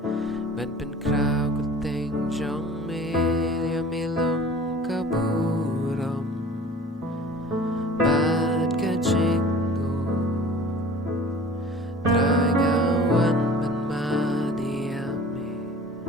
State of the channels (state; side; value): normal; both; correlation 0.44